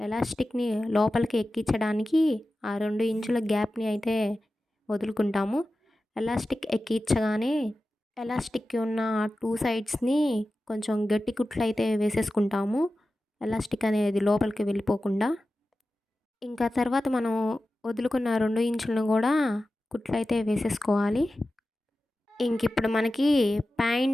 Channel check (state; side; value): normal; both; correlation 0.94